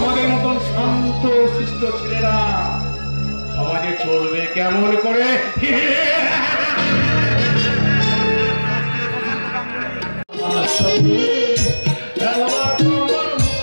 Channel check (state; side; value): inverted; both; correlation -1.00